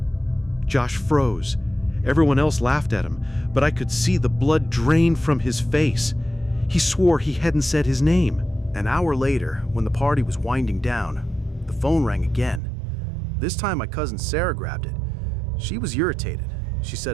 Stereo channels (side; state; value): left; drops out; at 12.6 s